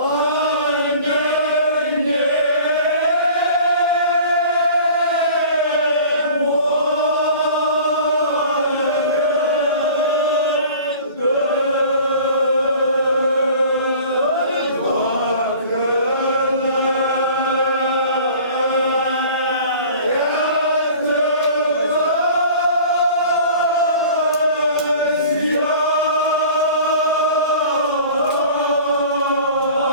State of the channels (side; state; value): both; inverted; correlation -0.44